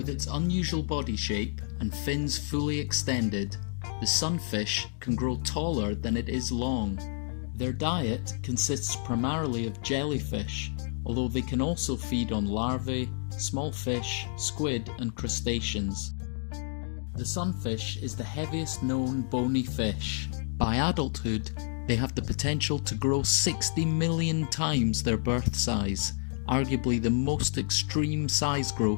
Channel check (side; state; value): right; silent; digital silence